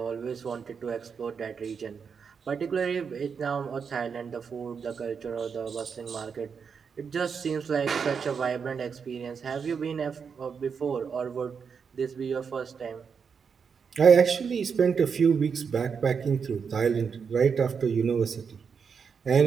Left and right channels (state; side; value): quieter; left; 6.2 dB